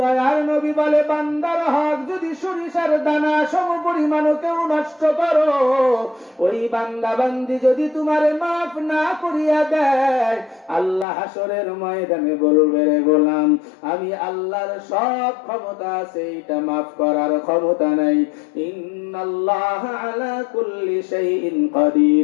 নবী বলে বান্দার হক যদি সরিষার দানা সম পরিমাণ কেউ নষ্ট করো, ওই বান্দা বান্দি যদি তোমারে মাফ না করিয়া দেয়, আল্লাহ হাসরের ময়দানে বলবে রে গোলাম, আমি আল্লাহর সব ক্ষমতা আছে, এটা মাফ করার ক্ষমতা নাই। ইন্নাল্লাহ আলা কুল্লি শাইইন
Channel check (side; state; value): right; drops out; at 11.1 s